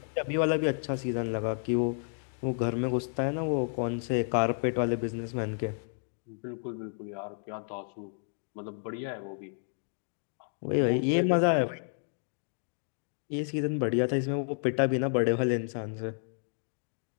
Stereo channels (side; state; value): right; silent; 57 dB below the other